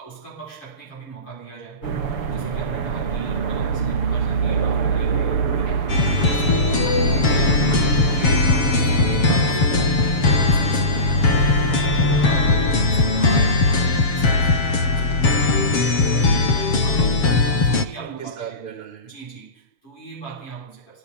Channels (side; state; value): right; late; 7.4 ms